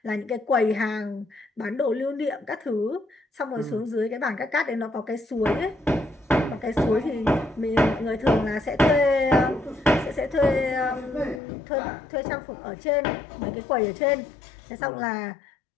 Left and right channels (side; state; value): right; drops out; at 11.4 s